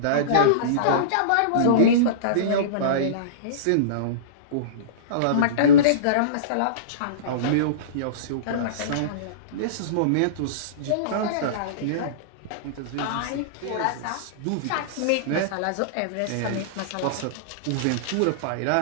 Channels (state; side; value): different; both; correlation -0.05